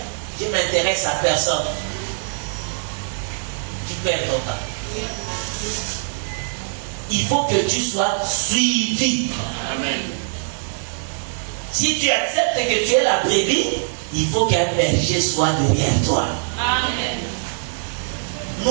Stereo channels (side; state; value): left; silent; digital silence